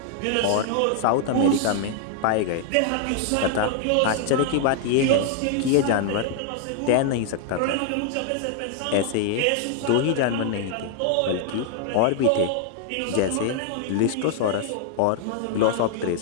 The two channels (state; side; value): different; both; correlation 0.00